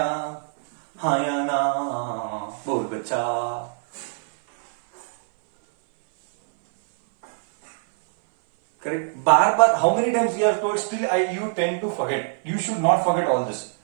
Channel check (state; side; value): silent; left; 59 dB below the other